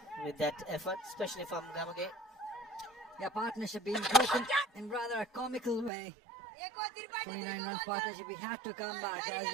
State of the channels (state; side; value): drops out; left; at 5.9 s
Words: with that effort, especially from Gamage. Yeah, partnership being broken in rather a comical way. 29 runs partnership, we had to come back, as